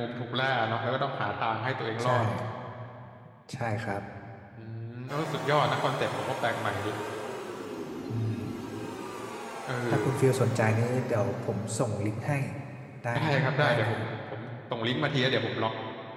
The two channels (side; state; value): both; identical; correlation 1.00